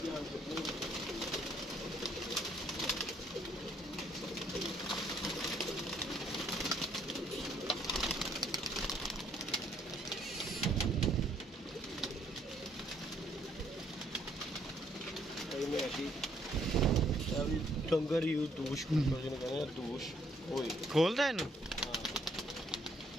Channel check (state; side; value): normal; both; correlation 0.67